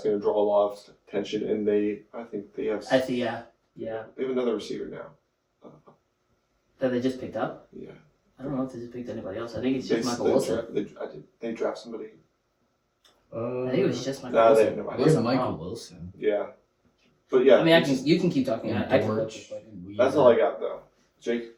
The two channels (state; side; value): identical; both; correlation 1.00